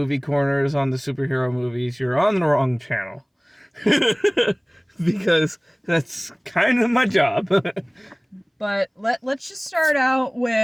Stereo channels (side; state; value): both; identical; correlation 1.00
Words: corners on the superhero movies, you're on the wrong channel. Because that's kind of my job. But let's just start out